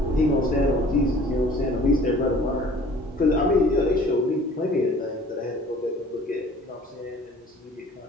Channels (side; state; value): both; normal; correlation 0.50